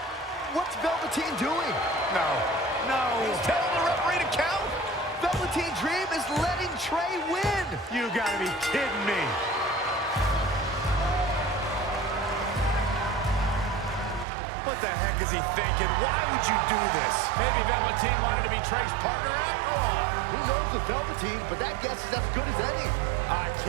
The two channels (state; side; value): drops out; left; at 14.2 s